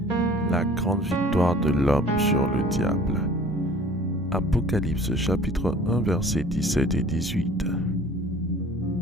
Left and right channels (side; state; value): both; normal; correlation 0.49